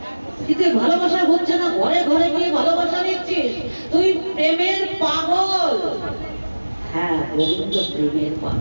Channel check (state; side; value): inverted; both; correlation -1.00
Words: কিন্তু ভালোবাসা হচ্ছে না, ঘরে ঘরে গিয়ে ভালোবাসা নিচ্ছিস, তুই প্রেমের পাগল। হ্যাঁ, গোবিন্দ প্রেমের